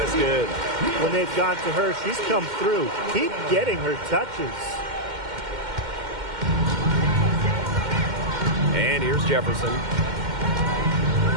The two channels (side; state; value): left; late; 2.1 ms